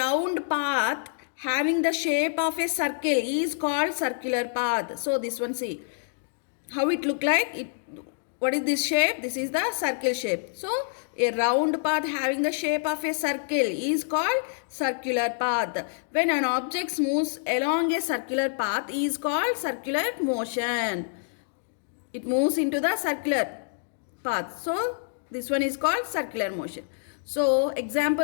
path having the shape of a circle is called circular path. So this one, see how it look like. What is this shape? This is the circle shape. So a round path having the shape of a circle is called circular path. When an object moves along a circular path is called circular motion. It moves into the circular path. So this one is called circular motion. So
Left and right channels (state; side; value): silent; right; digital silence